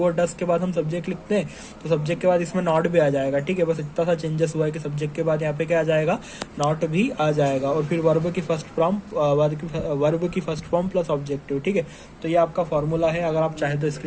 और डस के बाद हम सब्जेक्ट लिखते हैं तो सब्जेक्ट के बाद इसमें नॉट भी आ जाएगा। ठीक है, बस इतना सा चेंजेस हुआ है कि सब्जेक्ट के बाद यहाँ पे क्या आ जाएगा, नॉट भी आ जाएगा। और फिर वर्ब की फर्स्ट फॉर्म प्लस ऑब्जेक्टिव। ठीक है, तो ये आपका फॉर्मूला है, अगर आप चाहे तो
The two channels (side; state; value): both; identical; correlation 1.00